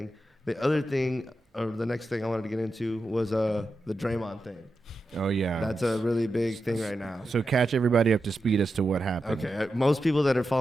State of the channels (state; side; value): normal; both; correlation 0.89